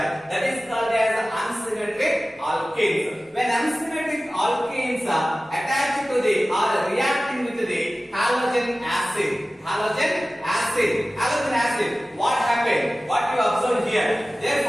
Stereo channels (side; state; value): both; normal; correlation 0.96